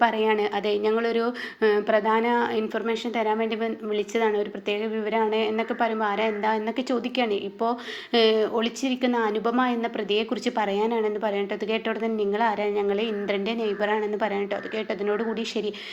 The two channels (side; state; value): both; identical; correlation 1.00